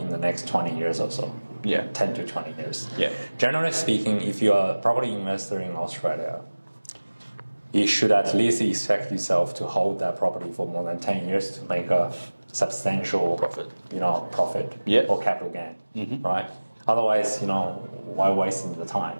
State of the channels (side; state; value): both; inverted; correlation -1.00